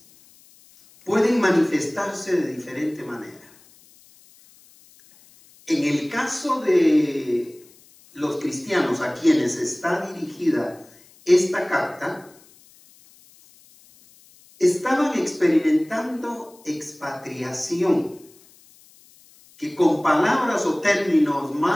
pueden manifestarse de diferente manera. En el caso de los cristianos a quienes está dirigida esta carta, estaban experimentando expatriación, que con palabras o términos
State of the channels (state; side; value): noise; left; hiss, 27 dB below the sound